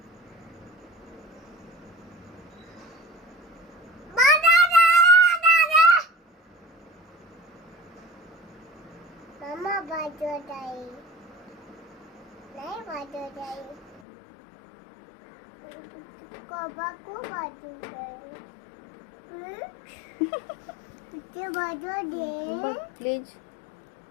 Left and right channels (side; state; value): right; drops out; at 14.0 s